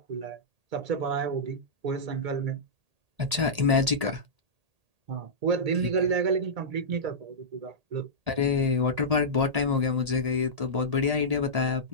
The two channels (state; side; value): late; left; 1.8 ms